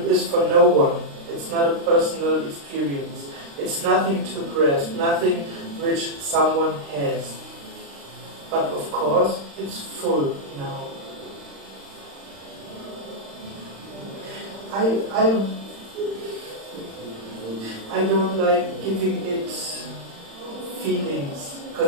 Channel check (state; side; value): late; left; 35 ms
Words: is for no one. It's not a personal experience. It's nothing to grasp, nothing which someone has. But of course, it's full now. I don't like giving it feelings,